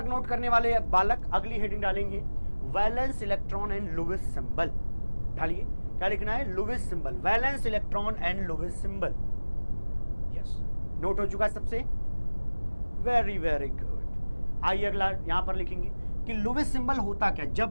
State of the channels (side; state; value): both; inverted; correlation -1.00